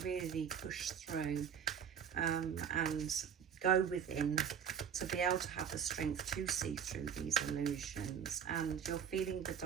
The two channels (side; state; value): left; quieter; 7.9 dB